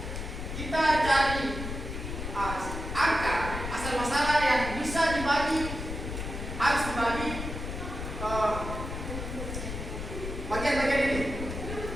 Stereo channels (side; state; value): left; noise; rumble, 6 dB below the sound